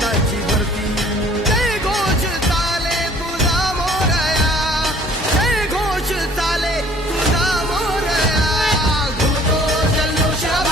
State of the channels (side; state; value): both; normal; correlation 0.54